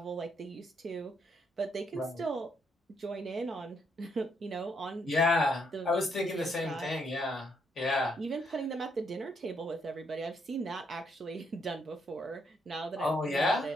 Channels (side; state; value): both; normal; correlation 0.74